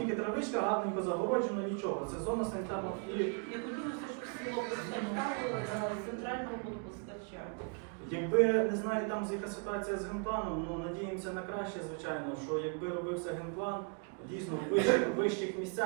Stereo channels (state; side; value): quieter; left; 37.8 dB